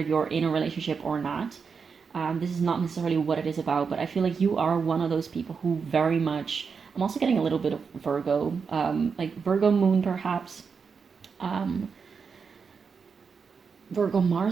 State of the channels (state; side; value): quieter; left; 5.7 dB